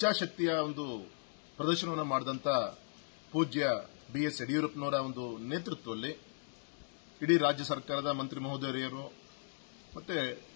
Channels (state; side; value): silent; right; digital silence